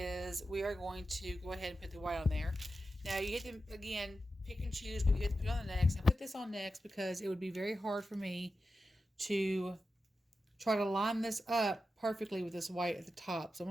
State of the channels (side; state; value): both; normal; correlation 0.91